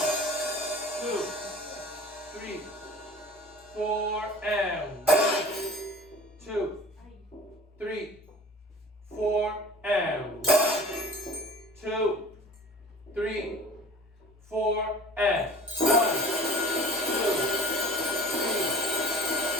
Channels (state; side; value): normal; both; correlation 0.43